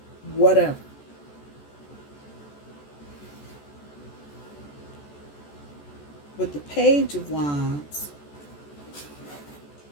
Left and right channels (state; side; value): late; right; 14 ms